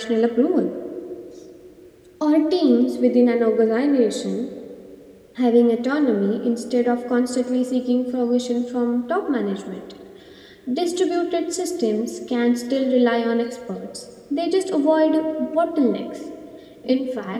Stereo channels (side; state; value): both; identical; correlation 1.00